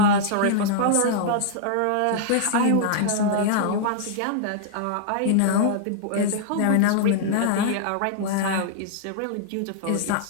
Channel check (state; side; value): different; both; correlation -0.01